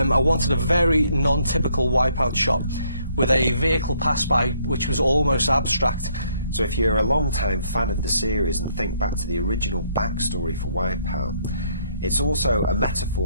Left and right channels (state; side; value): inverted; both; correlation -0.68